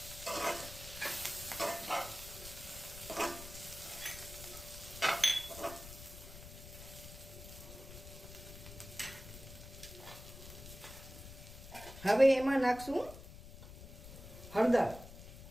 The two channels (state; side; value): noise; left; rumble, 14 dB below the sound